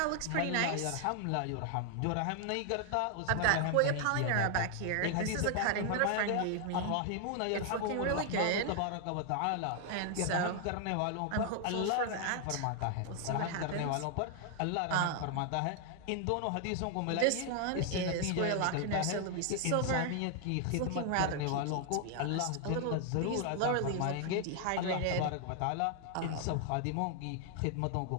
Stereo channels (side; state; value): both; different; correlation 0.00